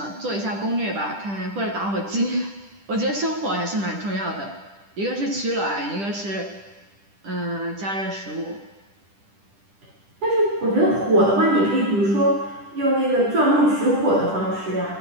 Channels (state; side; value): late; left; 10 ms